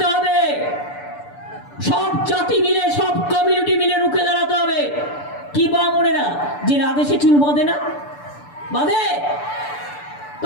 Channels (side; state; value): right; late; 6.9 ms